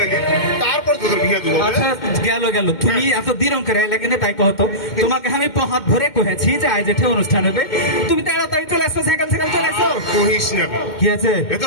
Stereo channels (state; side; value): late; right; 2.1 ms